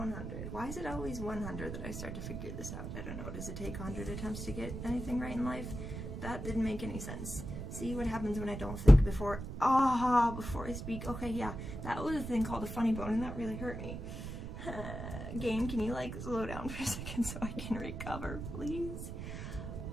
Why is it always 100 that I start to figure this out? I don't know. Does it take 100 attempts to get anything right in life? That didn't make any sense. See what happens when I don't think before I speak. Okay, yeah, that was a thing called a funny bone, and that really hurt me. Game, can you like slow down for a second so I can recover, please?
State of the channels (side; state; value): right; noise; rumble, 7 dB below the sound